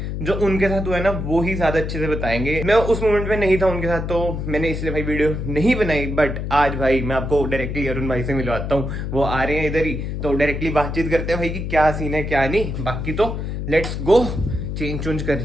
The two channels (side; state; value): left; noise; hum, 4 dB below the sound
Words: जो उनके साथ हुआ है ना वो ही ज्यादा अच्छे से बताएंगे। मैं उस मोमेंट में नहीं था उनके साथ तो मैंने इसलिए भाई वीडियो नहीं बनाई, बट आज भाई मैं आपको डायरेक्टली अरुण भाई से मिलवाता हूँ। वो आ रहे हैं इधर ही तो डायरेक्टली बातचीत करते हैं भाई कि क्या सीन है क्या नहीं। बाकी तो लेट्स गो। चेंज कर